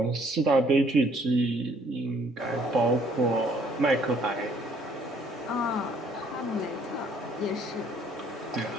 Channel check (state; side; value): normal; both; correlation 0.62